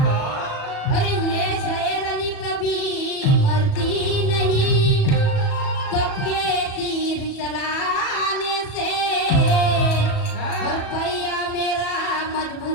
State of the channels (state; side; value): late; right; 37 ms